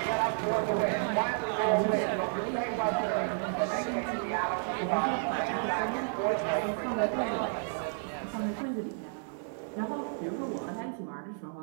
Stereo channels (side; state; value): left; silent; 57 dB below the other